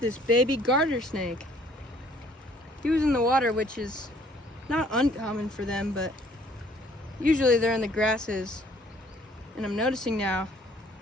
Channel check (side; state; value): both; normal; correlation 0.60